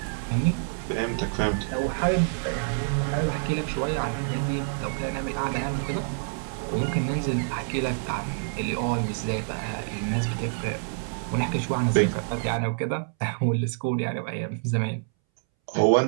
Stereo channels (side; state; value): left; silent; 60 dB below the other